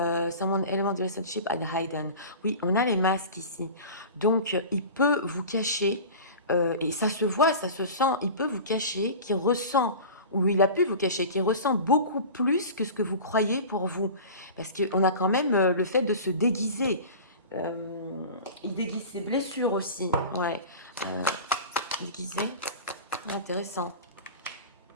element the relationship at hidden. Oui, on a les masques ici. Donc, il peut vous cacher, et ça se voit, ça se sent, il peut vous cacher qu'il ressent, ou il a pu vous cacher, qu'il ressent beaucoup plus que ce que vous croyez pour vous. Parce qu'on a quand même le fait de se déguiser. Il déguise ses blessures aussi. Ouais. Déguisé. Intéressant.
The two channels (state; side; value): inverted; both; correlation -0.35